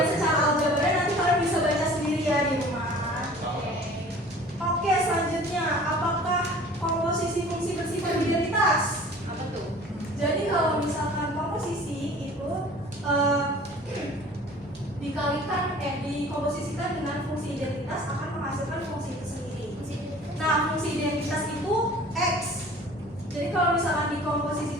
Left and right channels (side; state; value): both; normal; correlation 0.46